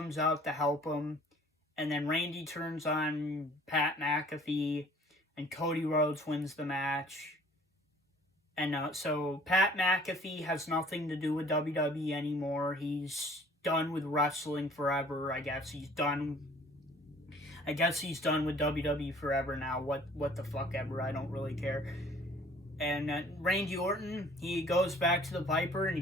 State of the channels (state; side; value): normal; both; correlation 0.53